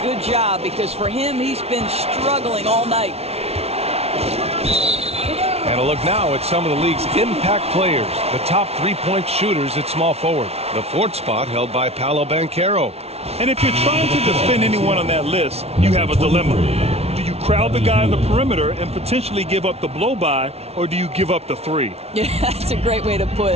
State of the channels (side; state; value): left; late; 0.30 ms